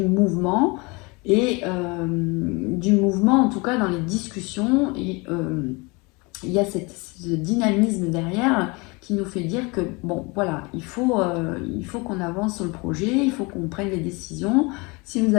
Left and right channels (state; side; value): quieter; right; 27.1 dB